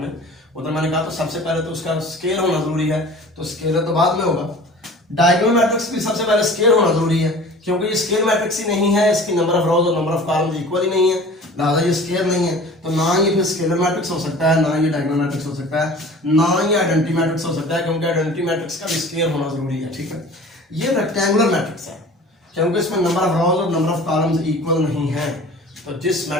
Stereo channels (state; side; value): normal; both; correlation 0.43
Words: उधर मैंने कहा तो सबसे पहले तो उसका स्केल होना जरूरी है, तो स्केलर तो बाद में होगा। डायगोनल मैट्रिक्स भी सबसे पहले स्केल होना जरूरी है, क्योंकि ये स्केल मैट्रिक्स ही नहीं है, इसकी नंबर ऑफ रोज और नंबर ऑफ कॉलम्स इक्वल ही नहीं है, लिहाजा ये स्केल नहीं है। तो ना ये फिर स्केलर मैट्रिक्स हो सकता है, ना ये डायगोनल मैट्रिक्स हो सकता है, ना ये आइडेंटिटी मैट्रिक्स हो सकता है, क्योंकि आइडेंटिटी मैट्रिक्स का भी स्केल होना जरूरी है। ठीक है? ये रेक्टेंगुलर मैट्रिक्स है, क्योंकि इसमें नंबर ऑफ रोज और नंबर ऑफ कॉलम्स इक्वल नहीं है। तो जिस